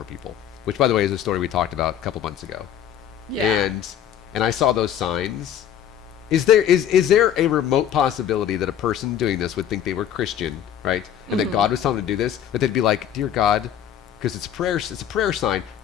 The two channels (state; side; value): quieter; right; 9.9 dB